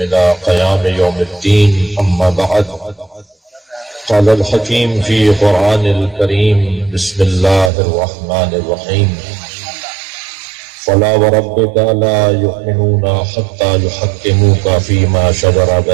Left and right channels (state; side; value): drops out; left; at 7.7 s